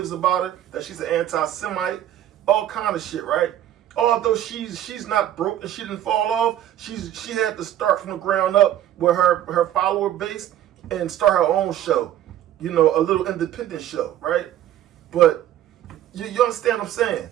about her, that she's an anti-Semite, all kind of shit, right? Although she's not broke and she didn't fall off, she had to start from the ground up with her follower base and start her own show, a little independent show, right? But you understand what I'm saying?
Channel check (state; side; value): quieter; left; 11.9 dB